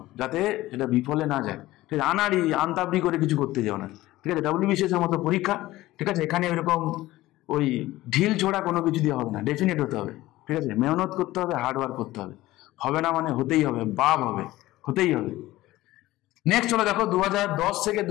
যাতে সেটা বিফলে না যায়, ঠিক আছে? আনতাবড়ি করে কিছু করতে যাও না, ঠিক আছে? ডাব্লিউবিসিএস এর মতো পরীক্ষা, ঠিক আছে? এখানে এরকম ওই ঢিল ছোড়া কোনো কিছু দিয়ে হবে না, ডেফিনেট হতে হবে, ঠিক আছে? মেহনত করতে হবে, হার্ডওয়ার্ক করতে হবে, হবে না মানে হতেই হবে, বাপ হবে, হতেই হবে। নেক্সট চলো দেখো 2010 থেকে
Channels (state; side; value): quieter; right; 17.0 dB